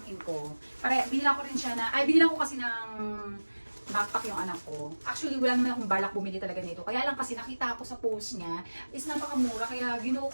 ko. Binilan ko rin siya binilan ko kasi ng backpack yung anak ko. Actually, wala naman akong balak bumili talaga nito. Kaya lang kasi nakita ko sa post niya, is napakamura, kaya ginuo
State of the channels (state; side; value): inverted; both; correlation -1.00